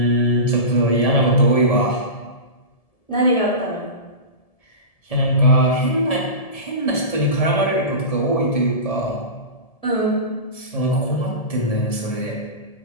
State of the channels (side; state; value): right; late; 1.7 ms